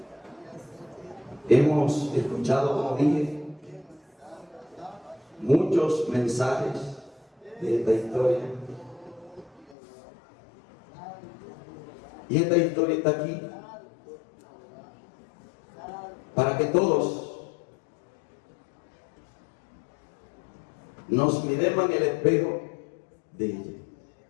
Hemos escuchado, como dije, muchos mensajes de esta historia. Y esta historia está aquí para que todos nos miremos en el espejo de ella.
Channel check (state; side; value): drops out; right; at 9.8 s